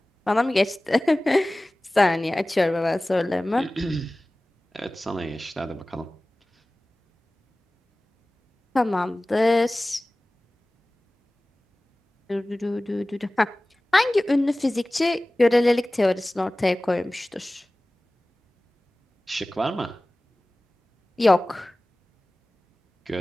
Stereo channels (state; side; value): normal; both; correlation 0.98